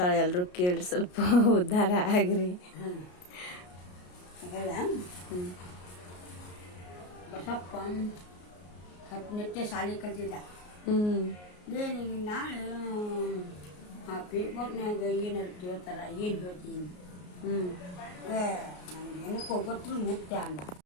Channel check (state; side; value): late; right; 33 ms